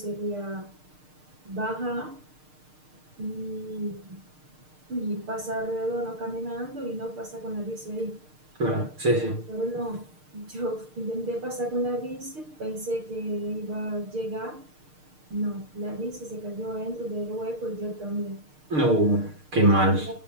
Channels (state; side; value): late; left; 6.6 ms